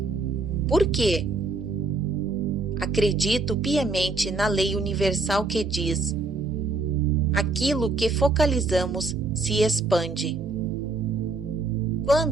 Por quê? Acredito piamente na lei universal que diz: aquilo que focalizamos se expande.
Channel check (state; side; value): quieter; left; 3.5 dB